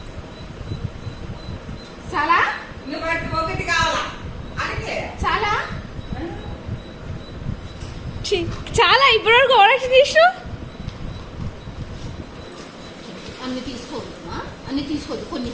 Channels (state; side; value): identical; both; correlation 1.00